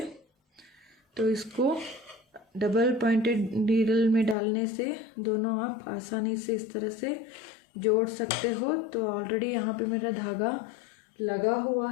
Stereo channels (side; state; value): right; drops out; at 4.4 s